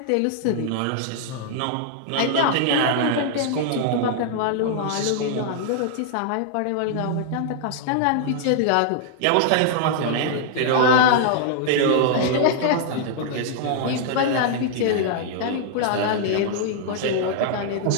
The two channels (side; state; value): both; different; correlation -0.01